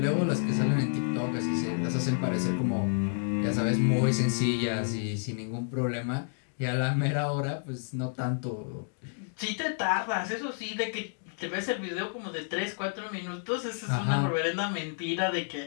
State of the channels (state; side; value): silent; right; digital silence